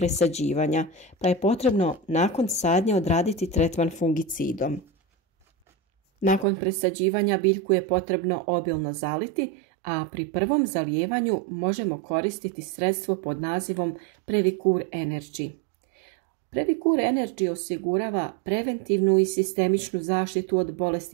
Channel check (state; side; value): drops out; left; at 6.5 s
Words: pa je potrebno nakon sadnje odraditi tretman fungicidom. Nakon presađivanja biljku je potrebno obilno zaliti, a pri prvom zalijevanju možemo koristiti sredstvo pod nazivom Previcur Energy. Previcur Energy osigurava preventivnu i sistemičnu zaštitu od